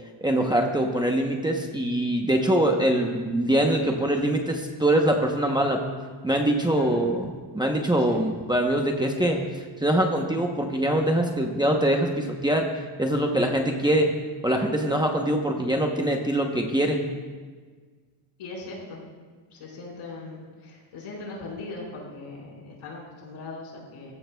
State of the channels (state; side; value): normal; both; correlation 0.54